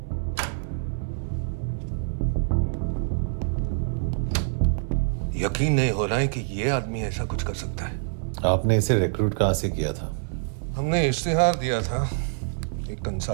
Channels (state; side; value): silent; left; 61 dB below the other